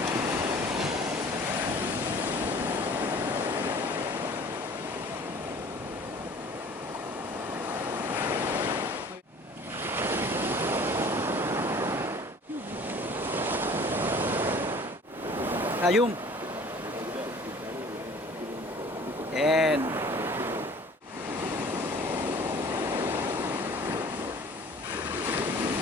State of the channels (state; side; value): normal; both; correlation 0.48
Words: La llum. Bien.